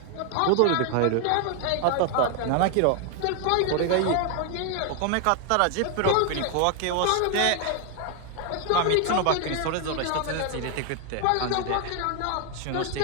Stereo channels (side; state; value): both; different; correlation 0.01